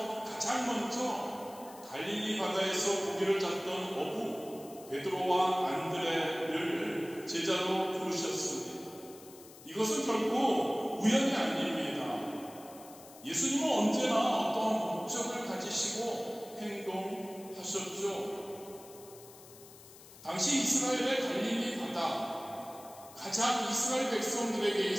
가장 먼저 갈릴리 바다에서 고기를 잡던 어부 베드로와 안드레를 제자로 부르셨습니다. 이것은 결코 우연이 아닙니다. 예수님은 언제나 어떤 목적을 가지시고 행동하셨죠. 당시 이스라엘의 갈릴리 바다, 가장 이스라엘 백성들에게,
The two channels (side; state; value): left; noise; hiss, 20 dB below the sound